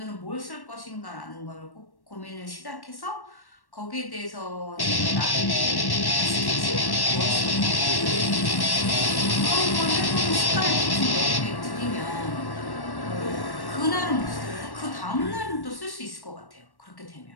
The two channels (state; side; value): late; right; 1.1 ms